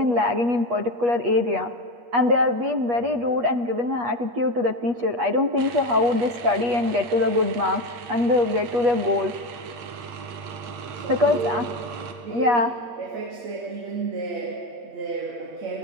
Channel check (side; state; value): left; late; 8.3 ms